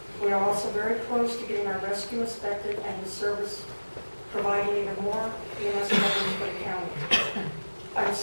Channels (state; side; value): inverted; both; correlation -1.00